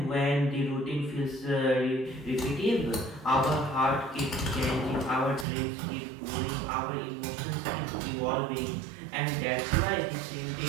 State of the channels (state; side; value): drops out; left; at 5.5 s